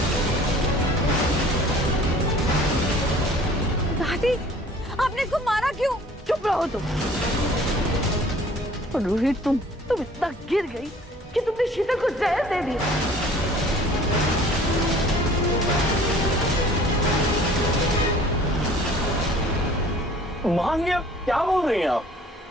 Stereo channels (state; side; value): normal; both; correlation 0.51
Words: दादी, आपने इसको मारा क्यों? चुप रहो तुम। और रोहित, तुम इतना गिर गई कि तुमने शीतल को जहर दे दिया। मां, ये क्या बोल रही हैं आप?